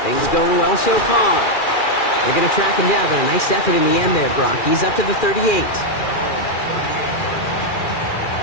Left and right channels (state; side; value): late; right; 2.4 ms